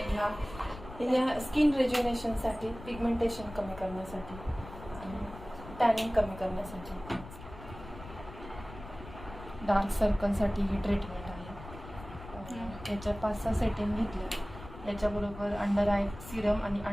घ्या. स्किन रेज्युनेशनसाठी, पिगमेंटेशन कमी करण्यासाठी, टॅनिंग कमी करण्यासाठी, डार्क सर्कलसाठी ही ट्रीटमेंट आहे. याच्या 5-6 सेटिंग घेतल्या. याच्याबरोबर अंडर आय सिरम आणि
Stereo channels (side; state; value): left; noise; rumble, 14 dB below the sound